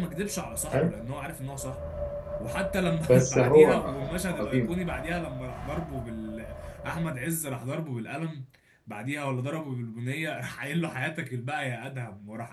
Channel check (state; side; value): identical; both; correlation 1.00